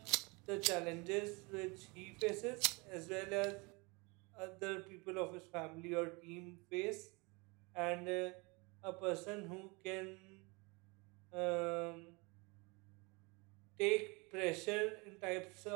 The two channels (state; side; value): quieter; left; 27.9 dB